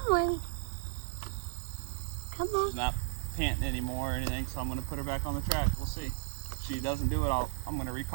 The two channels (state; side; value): silent; left; digital silence